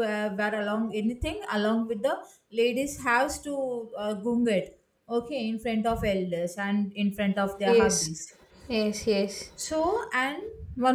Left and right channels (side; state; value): both; identical; correlation 1.00